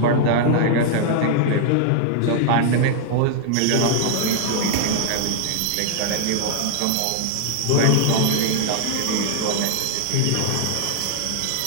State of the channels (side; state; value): both; different; correlation -0.01